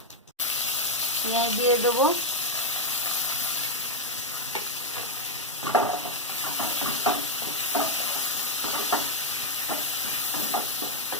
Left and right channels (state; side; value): normal; both; correlation 0.03